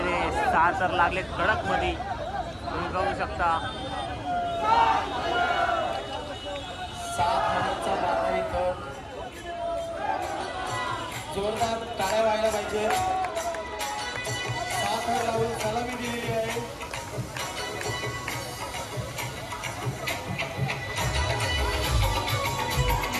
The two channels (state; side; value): identical; both; correlation 1.00